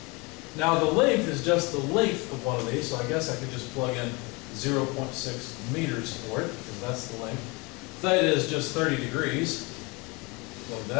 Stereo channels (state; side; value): quieter; right; 27.3 dB